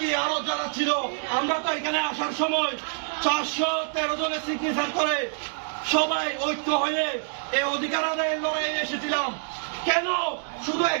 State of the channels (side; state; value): left; silent; digital silence